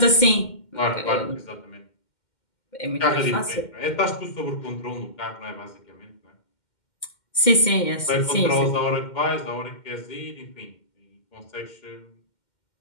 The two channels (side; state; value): right; late; 2.1 ms